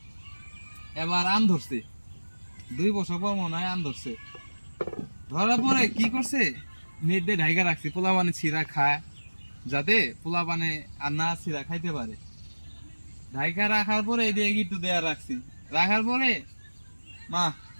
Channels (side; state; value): both; inverted; correlation -1.00